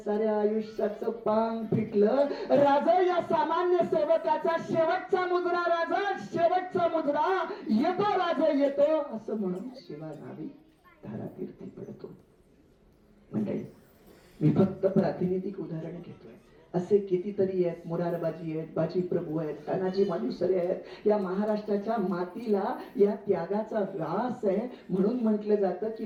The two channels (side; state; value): both; identical; correlation 1.00